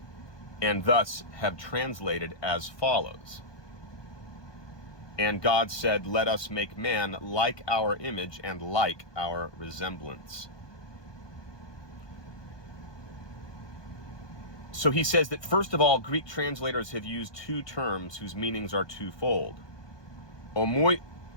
and thus have translated as follows. And God said, let us make man like our image and like our resemblance. So he says that, first of all, Greek translators have used two terms whose meanings are twofold.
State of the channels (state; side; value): late; right; 1.2 ms